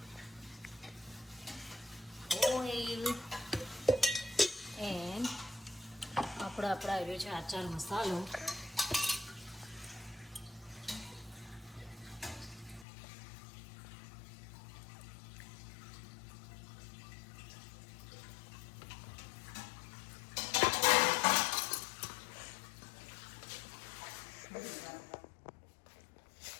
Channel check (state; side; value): drops out; right; at 12.9 s